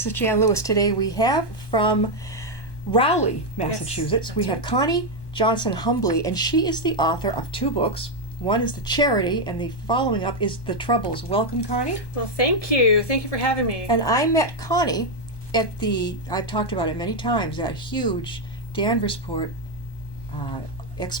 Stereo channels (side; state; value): right; late; 1.1 ms